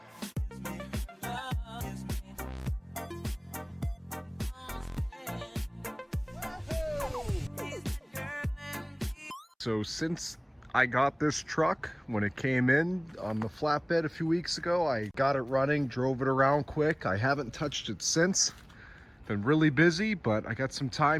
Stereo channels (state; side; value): identical; both; correlation 1.00